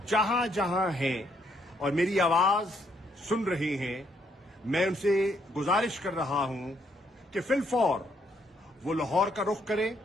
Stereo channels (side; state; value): both; normal; correlation 0.72